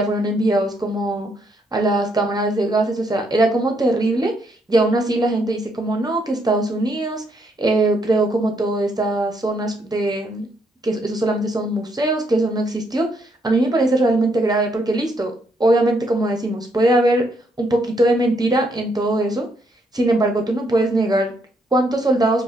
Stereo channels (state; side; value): normal; both; correlation 0.73